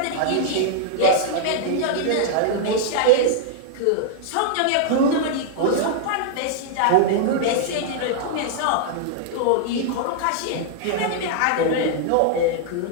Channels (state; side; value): different; both; correlation -0.01